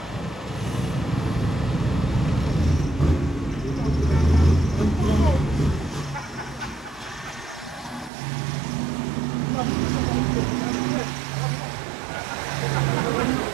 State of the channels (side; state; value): left; drops out; at 8.1 s